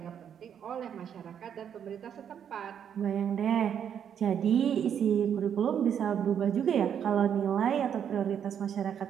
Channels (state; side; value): quieter; left; 8.6 dB